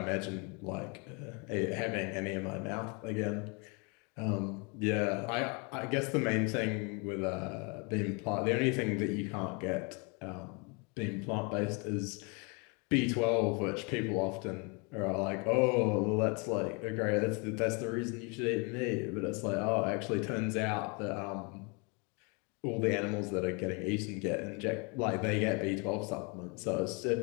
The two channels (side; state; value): right; quieter; 32.3 dB